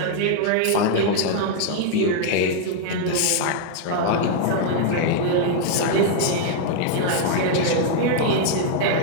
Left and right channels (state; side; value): different; both; correlation 0.00